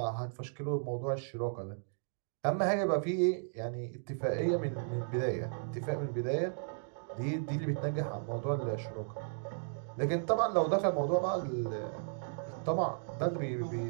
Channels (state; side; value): silent; left; digital silence